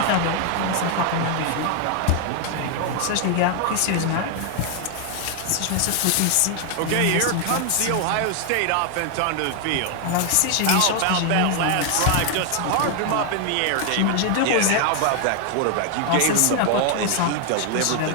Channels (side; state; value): both; different; correlation 0.00